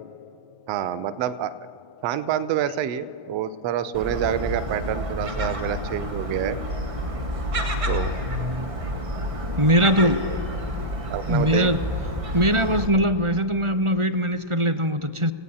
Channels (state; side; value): late; left; 1.6 ms